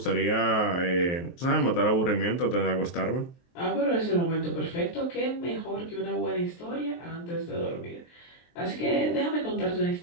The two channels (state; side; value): late; right; 23 ms